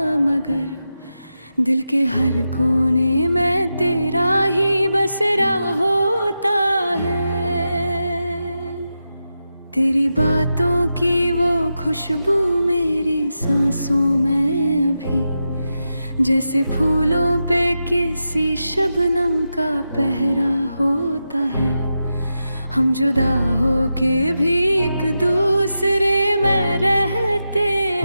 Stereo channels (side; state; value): both; inverted; correlation -0.89